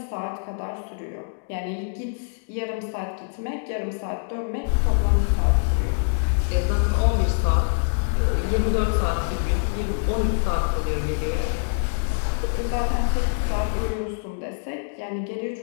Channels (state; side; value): silent; right; digital silence